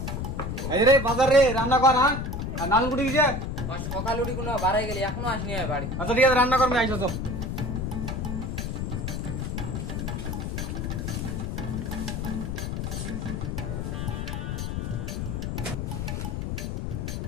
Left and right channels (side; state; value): left; noise; rumble, 3 dB below the sound